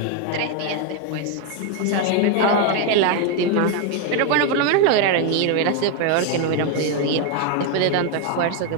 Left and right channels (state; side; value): different; both; correlation 0.01